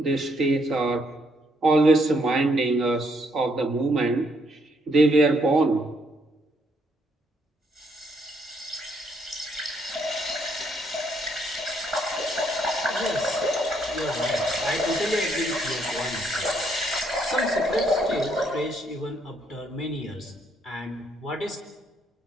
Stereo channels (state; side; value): normal; both; correlation 0.72